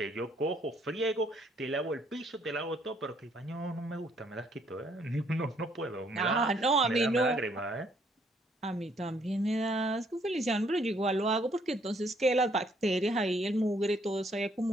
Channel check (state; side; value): normal; both; correlation 0.67